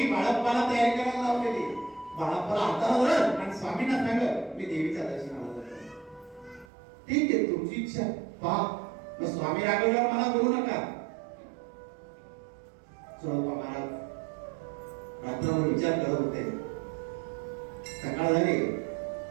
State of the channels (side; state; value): left; drops out; at 6.7 s